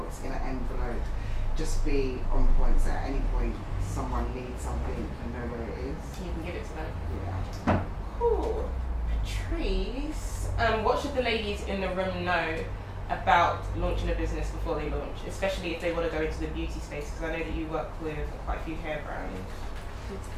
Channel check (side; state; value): both; identical; correlation 1.00